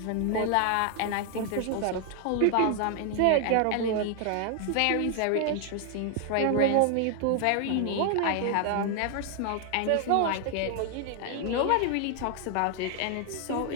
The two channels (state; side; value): different; both; correlation 0.00